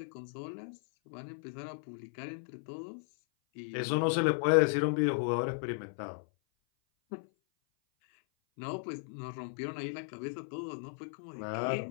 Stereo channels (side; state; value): right; silent; 54 dB below the other